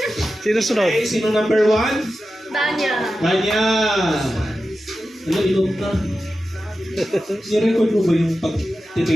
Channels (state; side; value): normal; both; correlation 0.92